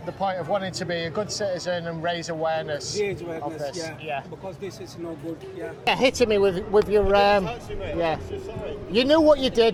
the point of wanting to be a good citizen and raise awareness of this. Yeah. Because this is no good. Yeah. Hitting me with your yeah. You knew what you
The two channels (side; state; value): both; identical; correlation 1.00